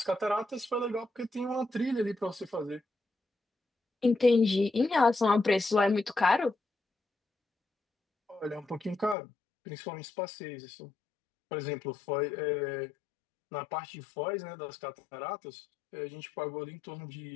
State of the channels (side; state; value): right; drops out; at 9.2 s